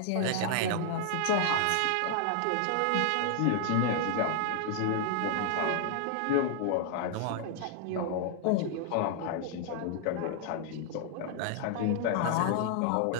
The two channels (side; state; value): both; different; correlation 0.00